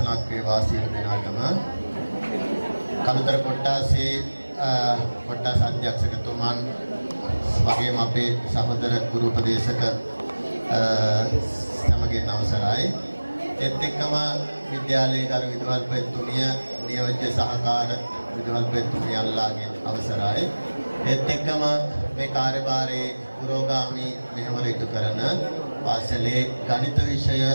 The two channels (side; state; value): both; inverted; correlation -1.00